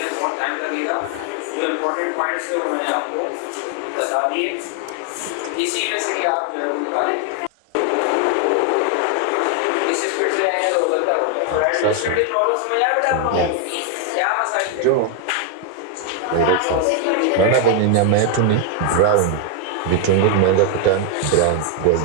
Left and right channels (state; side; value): different; both; correlation 0.01